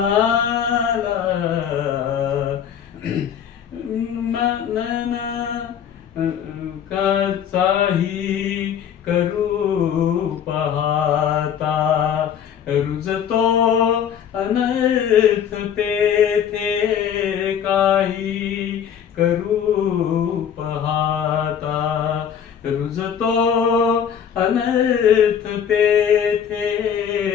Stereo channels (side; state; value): right; quieter; 8.5 dB